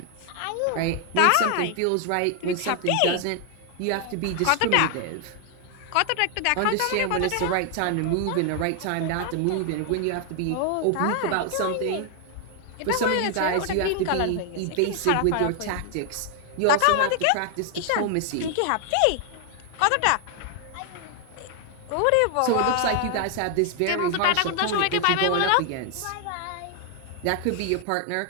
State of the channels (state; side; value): different; both; correlation 0.00